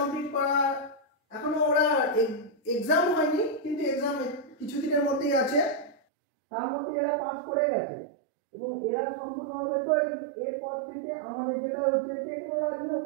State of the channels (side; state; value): left; drops out; at 6.0 s